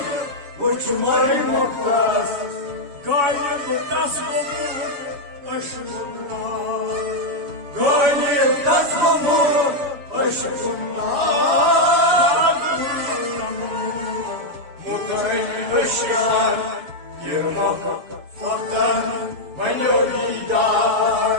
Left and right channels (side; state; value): left; late; 7.0 ms